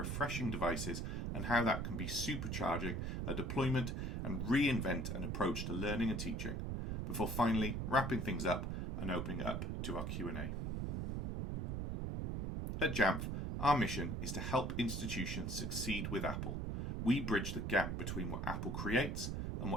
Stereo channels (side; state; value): right; noise; rumble, 2 dB below the sound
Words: devices and how that can be supercharging a deployment and reinvent an approach to learning and teaching before finally wrapping things up and opening up to our Q&A. At Jamf, our mission is to help institutions succeed with Apple. We bridge the gap between what Apple creates and